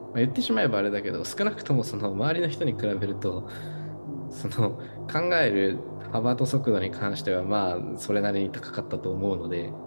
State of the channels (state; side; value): inverted; both; correlation -1.00